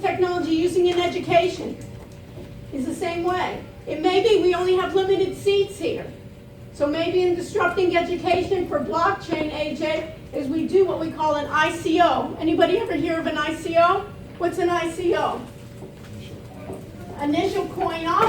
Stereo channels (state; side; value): identical; both; correlation 1.00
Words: using in education. It's the same way. It may be we only have limited seats here. So maybe in disrupting education for blockchain, AJ, is we do what we call an ICO. Anybody ever hear of an ICO? What's an ICO? Initial coin